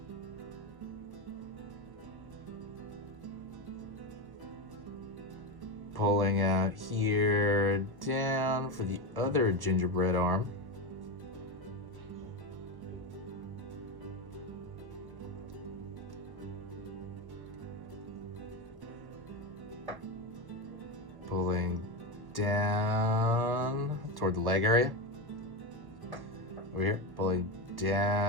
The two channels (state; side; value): late; left; 1.1 ms